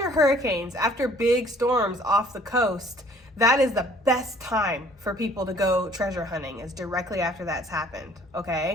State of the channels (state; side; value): normal; both; correlation 0.57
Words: hurricanes, after big storms off the coast, that is the best time for people to go treasure hunting, is directly after that's happened,